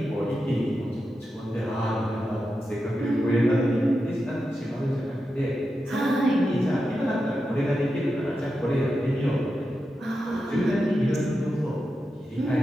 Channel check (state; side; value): normal; both; correlation 0.89